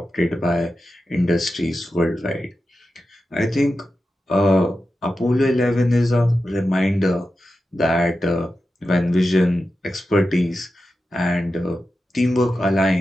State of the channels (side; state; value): both; normal; correlation 0.91